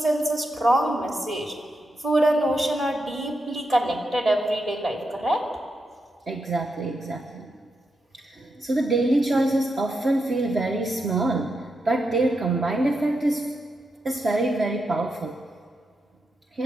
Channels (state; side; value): normal; both; correlation 0.85